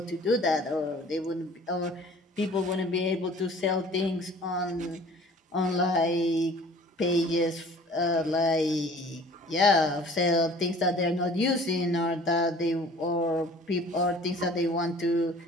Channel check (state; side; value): normal; both; correlation 0.49